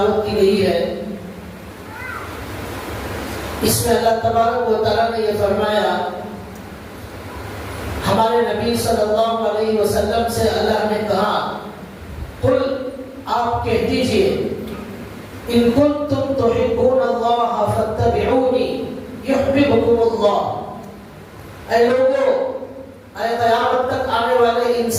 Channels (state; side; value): identical; both; correlation 1.00